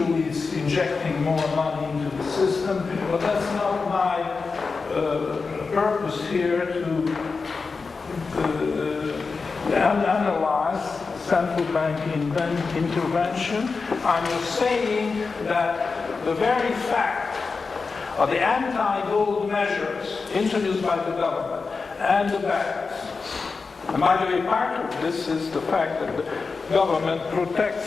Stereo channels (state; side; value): quieter; right; 4.5 dB